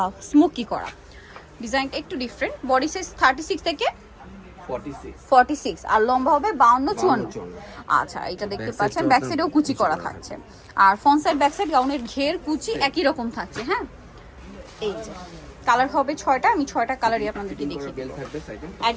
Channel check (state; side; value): identical; both; correlation 1.00